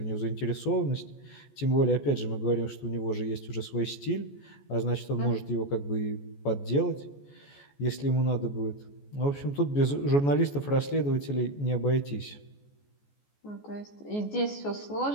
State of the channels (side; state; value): right; late; 14 ms